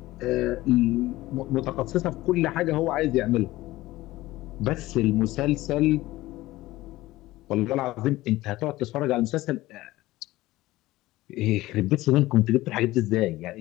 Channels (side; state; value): right; quieter; 17.7 dB